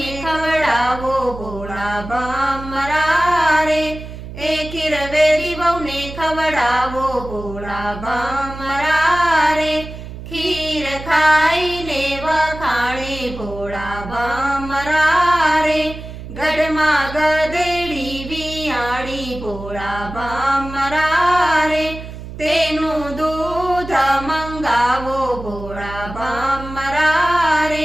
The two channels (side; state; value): right; noise; hum, 11 dB below the sound